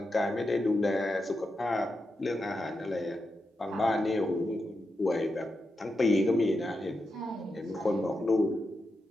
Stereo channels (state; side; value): normal; both; correlation 0.87